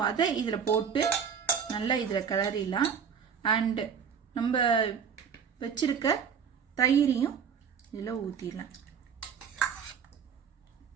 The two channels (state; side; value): quieter; left; 7.1 dB